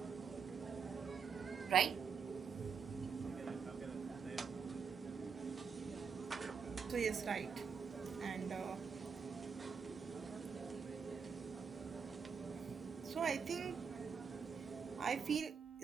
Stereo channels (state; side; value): quieter; left; 6.1 dB